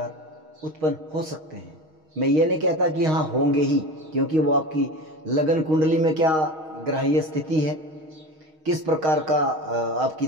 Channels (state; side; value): late; left; 6.4 ms